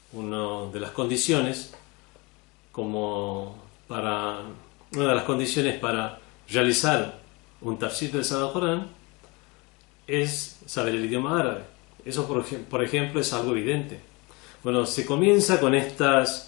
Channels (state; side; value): quieter; right; 26.6 dB